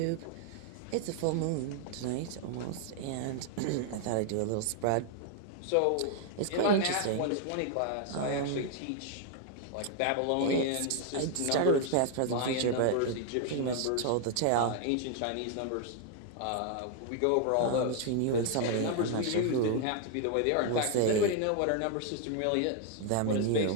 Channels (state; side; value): different; both; correlation 0.00